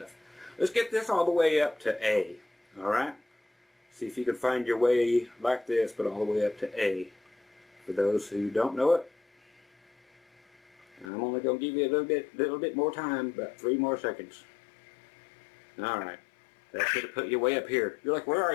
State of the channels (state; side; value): drops out; right; at 11.1 s